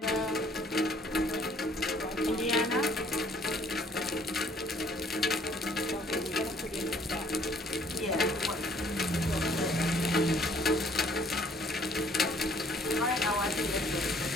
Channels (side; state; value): both; normal; correlation 0.60